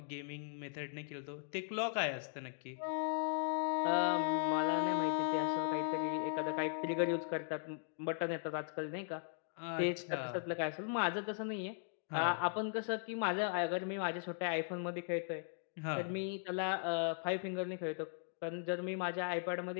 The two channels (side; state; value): right; silent; digital silence